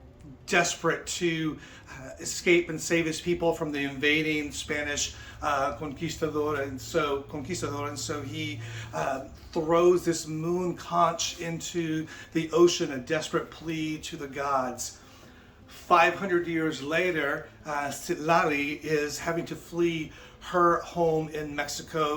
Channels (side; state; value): both; identical; correlation 1.00